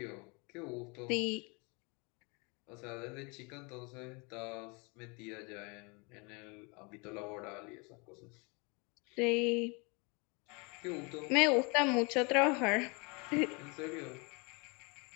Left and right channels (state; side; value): quieter; right; 30.4 dB